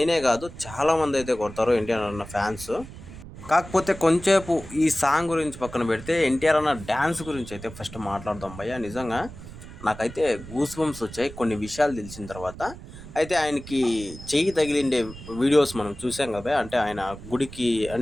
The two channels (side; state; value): right; noise; rumble, 14 dB below the sound